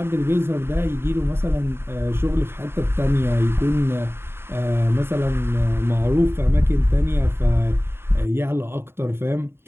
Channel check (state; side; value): late; left; 0.11 ms